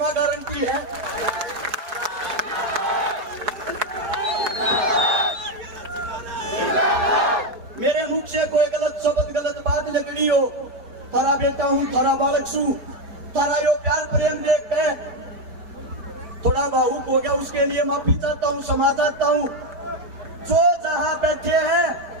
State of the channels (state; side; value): late; left; 4.7 ms